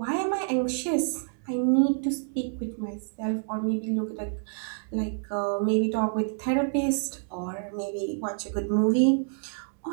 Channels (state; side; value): silent; left; digital silence